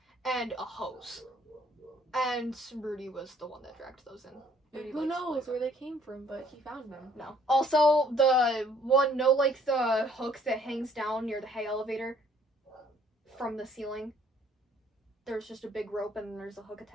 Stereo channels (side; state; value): both; normal; correlation 0.61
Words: and a hose. And Rudy was the one that dragged those in. Rudy, who knows where they came from, but he found them. No. Also, the hook that hangs down near the hay elevator from the ceiling. There's just a big rope and there's a hook